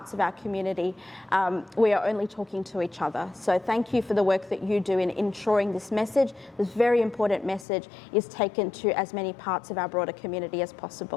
of our community, we are only talking to each other. So thank you for the work that you do in ensuring this message, this very important message, is taken to as many parts of our broader community as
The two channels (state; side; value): drops out; right; at 7.7 s